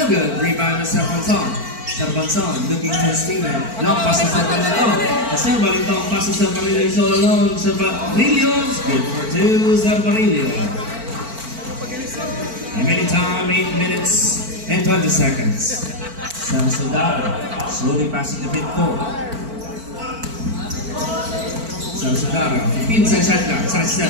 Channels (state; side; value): late; left; 4.5 ms